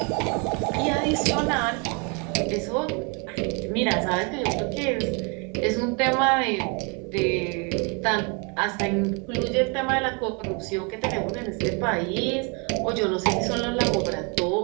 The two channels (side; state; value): left; quieter; 33.4 dB